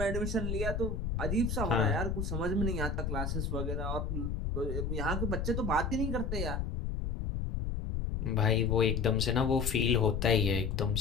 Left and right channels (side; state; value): left; noise; rumble, 2 dB below the sound